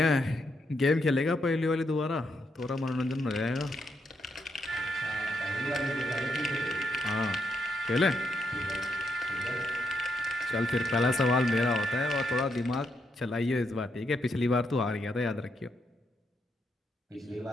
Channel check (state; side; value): normal; both; correlation 0.79